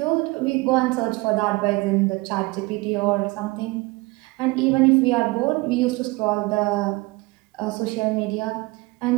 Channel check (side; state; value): left; quieter; 23.5 dB